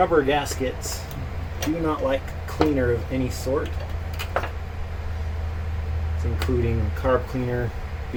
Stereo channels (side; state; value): both; identical; correlation 1.00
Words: gaskets do not like cleaner of any sort. It's including carb cleaner,